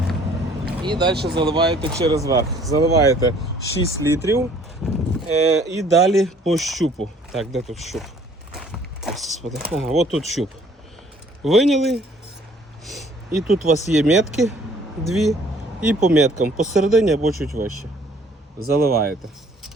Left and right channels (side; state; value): both; normal; correlation 0.58